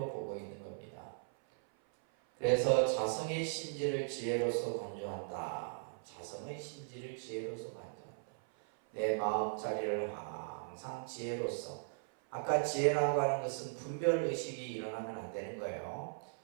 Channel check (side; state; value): left; silent; 52 dB below the other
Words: 보고 있는 겁니다. 그래서 자성의 심지를 지혜로서 간주한다. 자성의 심지를 지혜로서 간주한다. 내 마음자리를 항상 지혜로서, 아까 지혜라고 하는 것은 분별의식이 일어나면 안 되는 거예요.